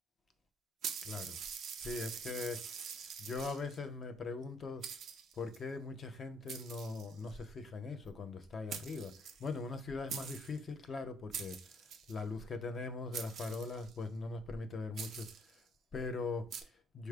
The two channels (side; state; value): both; normal; correlation 0.66